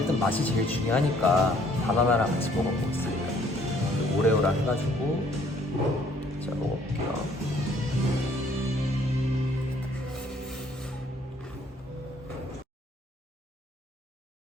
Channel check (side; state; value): both; normal; correlation 0.62